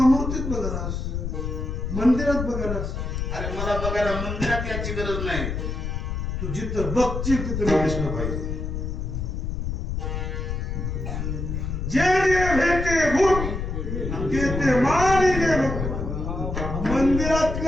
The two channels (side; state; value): left; noise; rumble, 3 dB below the sound